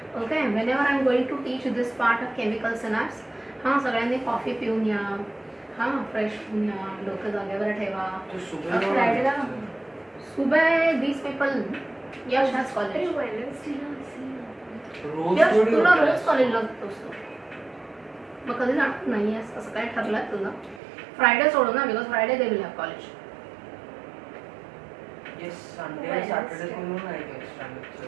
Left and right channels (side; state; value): left; drops out; at 20.8 s